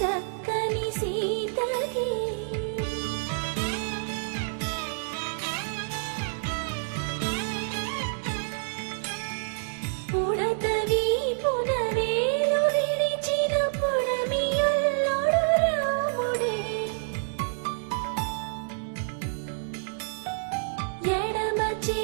చక్కని సీతకి ఉడత వీపున వేలు విరిచిన పుడమియల్లుడు రాముడే. ఎడమ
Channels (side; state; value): left; silent; digital silence